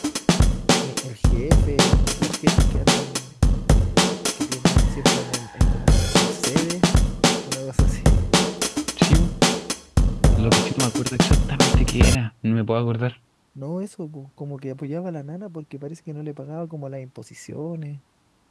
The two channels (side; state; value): both; identical; correlation 1.00